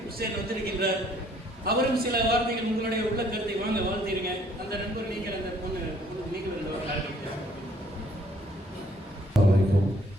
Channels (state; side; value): normal; both; correlation 0.62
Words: ஹுசேன் வந்திருக்கின்றார். அவரும் சில வார்த்தைகள் உங்களுடைய உள்ள கருத்தை வாங்க வாழ்த்திருங்க. அந்த நண்பர் நீங்கள், அந்த பொண்ணு நீங்கள்